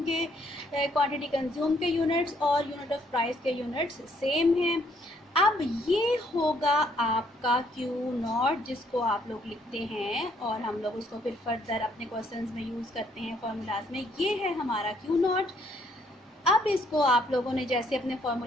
क्वांटिटी कंज्यूम के यूनिट्स और यूनिट ऑफ प्राइस के यूनिट्स सेम हैं। अब ये होगा आपका क्यू नॉट, जिसको आप लोग लिखते हैं और हम लोग उसको फिर फर्दर अपने क्वेश्चंस में यूज़ करते हैं फार्मूलाज में। ये है हमारा क्यू नॉट। अब इसको आप लोगों ने जैसे अपने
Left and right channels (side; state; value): both; normal; correlation 0.68